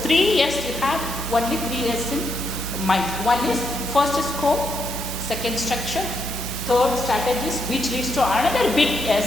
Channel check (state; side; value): normal; both; correlation 0.79